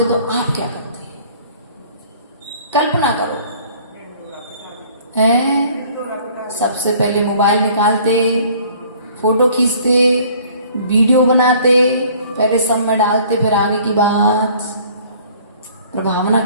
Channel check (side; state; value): both; inverted; correlation -0.54